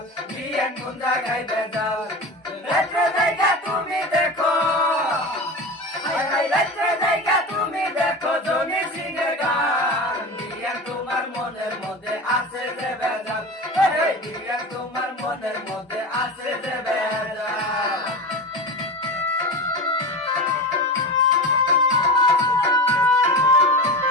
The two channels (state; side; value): normal; both; correlation 0.27